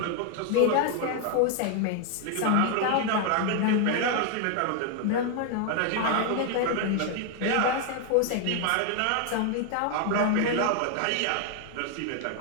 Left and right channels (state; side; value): different; both; correlation 0.00